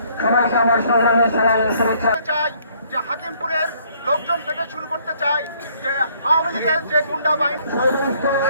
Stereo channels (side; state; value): both; inverted; correlation -0.63